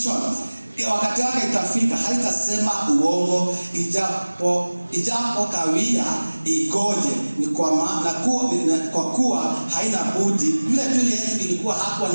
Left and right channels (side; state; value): both; inverted; correlation -1.00